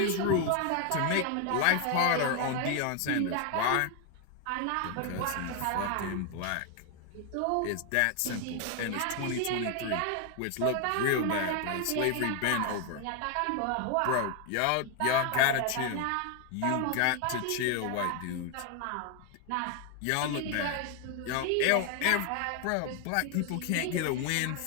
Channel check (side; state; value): both; different; correlation 0.01